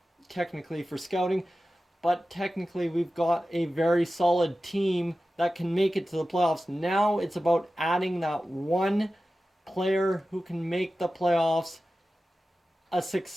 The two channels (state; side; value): normal; both; correlation 0.94